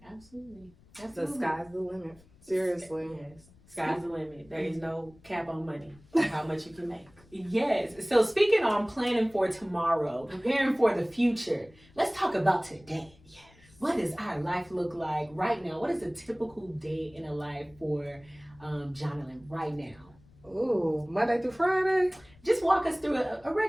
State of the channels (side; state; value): left; noise; rumble, 27 dB below the sound